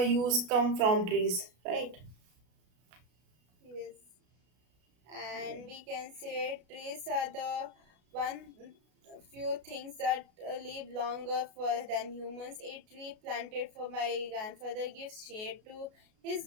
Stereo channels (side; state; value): left; late; 33 ms